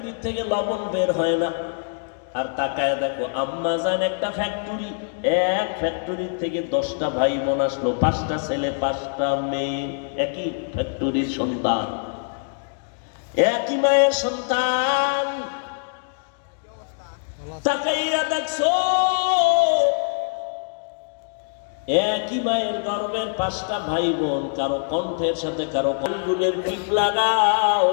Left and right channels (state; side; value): silent; right; 63 dB below the other